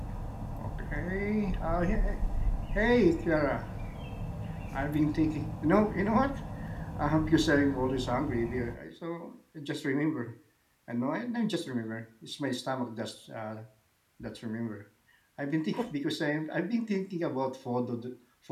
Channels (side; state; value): both; identical; correlation 1.00